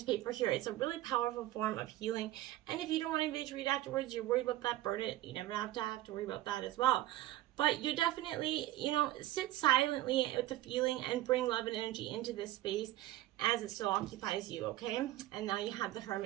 paper here. It's a really powerful form of healing. And if you don't want anybody to read afterwards, you're worried about that, burn it. You never have to worry about that as well. But you definitely, sit silently with the feeling and bring love and energy into this space as it still occupies you, okay? And now you have the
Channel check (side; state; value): left; quieter; 15.3 dB